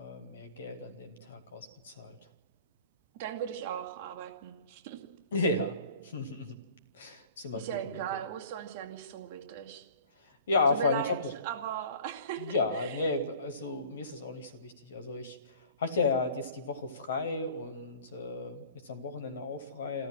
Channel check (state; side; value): inverted; both; correlation -0.46